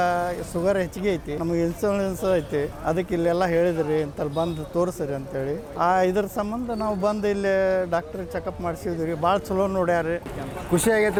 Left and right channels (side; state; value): both; identical; correlation 1.00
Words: ಶುಗರ್ ಹೆಚ್ಚಿಗೆ ಐತಿ, ನಮಗೆ ಇನ್ಸುಲೆನ್ಸ್ ಐತಿ, ಅದಕ್ಕೆ ಇಲ್ಲೆಲ್ಲ ಹೇಳಿದ್ರಿ ಅಂತಲ್ಲಿ ಬಂದು ತೋರಿಸ್ರಿ ಅಂತೇಳಿ ಇದ್ರ ಸಂಬಂಧ ನಾವು ಬಂದು ಇಲ್ಲಿ ಡಾಕ್ಟ್ರ್ ಚೆಕಪ್ ಮಾಡಿಸಿದ್ವಿ. ಭಾಳ ಚಲೋ ನೋಡ್ಯಾರಿ, ಖುಷಿ